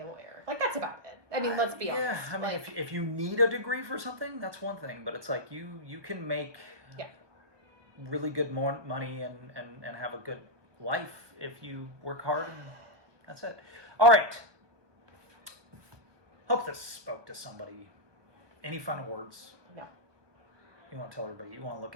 a lawyer. Like, that's about it. I mean, let's be honest. Yeah, I mean, if you need a degree for something, that's one thing. But it's like you can make really good money and have a good life if you work hard, and that's it. All right. Hope this spoke to somebody. Any final words? No. You want to tell everybody, you want to look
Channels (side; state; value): left; late; 1.2 ms